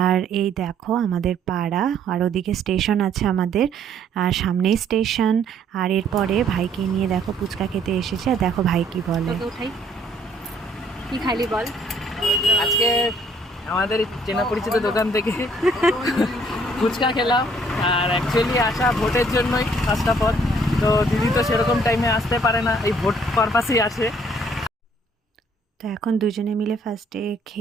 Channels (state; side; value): normal; both; correlation 0.63